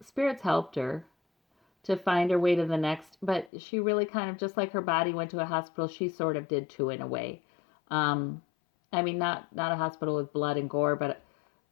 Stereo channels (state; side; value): drops out; right; at 3.5 s